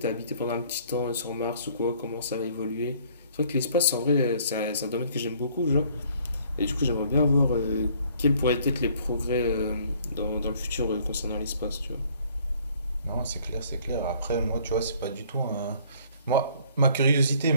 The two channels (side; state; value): both; inverted; correlation -0.59